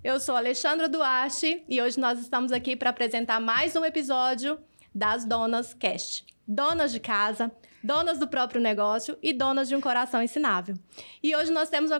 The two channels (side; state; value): both; inverted; correlation -1.00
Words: Eu sou Alexandra Duarte e hoje nós estamos aqui para apresentar mais um episódio das Donas Cast. Donas de casa, donas do próprio negócio e donas de um coração ensinável. E hoje nós temos uma